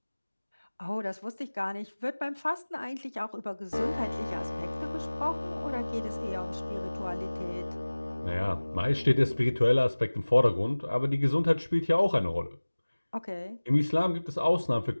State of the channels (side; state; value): both; inverted; correlation -1.00